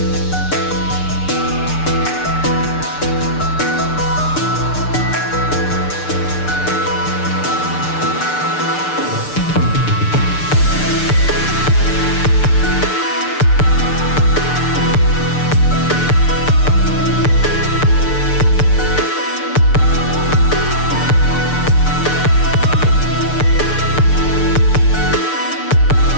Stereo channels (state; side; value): late; right; 6.7 ms